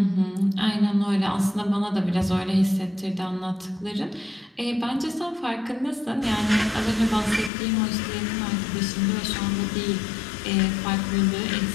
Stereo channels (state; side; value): drops out; right; at 7.5 s